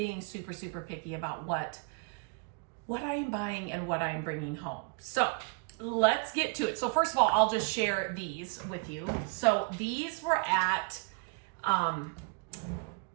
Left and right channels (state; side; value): quieter; left; 33.4 dB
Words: super, super picky about what I am buying and what I am bringing home. So let's get to it. So first of all, I'll just share these with you. So these were at